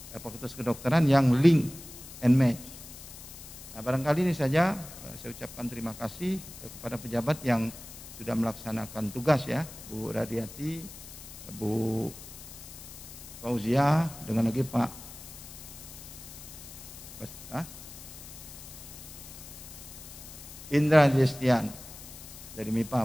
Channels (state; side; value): noise; left; hiss, 15 dB below the sound